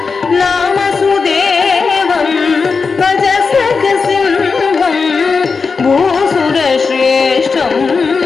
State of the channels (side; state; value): right; quieter; 4.9 dB